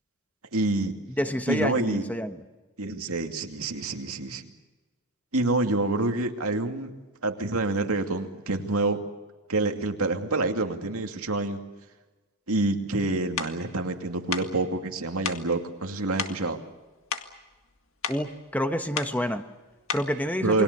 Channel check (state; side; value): normal; both; correlation 0.20